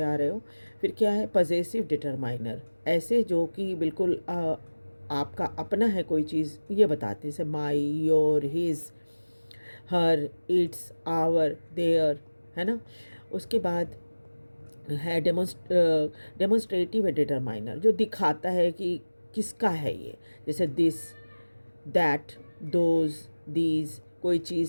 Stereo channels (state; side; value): inverted; both; correlation -1.00